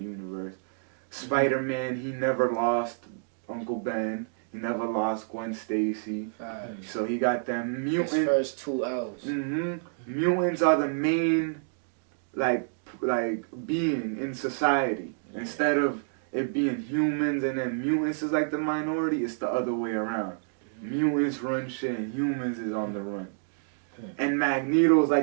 universe. Spider-Man, he never lost Uncle Ben. He never lost Gwen Stacy. So he got them mutants. His first 2 L's. Mutants are the main, like being in society. Instead of it being humans and then mutants is like the minority, it's the other way around. Mutants run shit and humans is on the run. And Magneto's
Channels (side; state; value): left; silent; digital silence